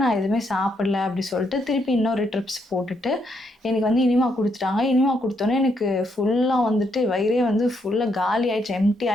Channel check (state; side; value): normal; both; correlation 0.76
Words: நான் எதுவுமே சாப்பிடல அப்படி சொல்லிட்டு திருப்பி இன்னொரு ட்ரிப்ஸ் போட்டுட்டு எனக்கு வந்து இனிமா கொடுத்துட்டாங்க. இனிமா கொடுத்தோன்னே எனக்கு ஃபுல்லாக வந்துட்டு வயிறே வந்து ஃபுல்லாக காலி ஆகிடுச்சு, எம்டி